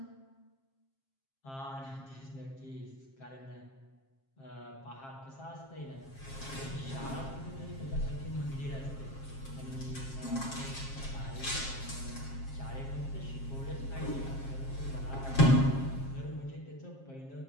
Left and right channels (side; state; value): right; late; 7.5 ms